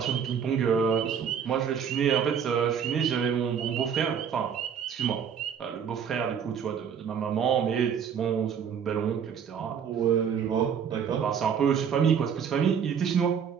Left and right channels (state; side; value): quieter; left; 7.5 dB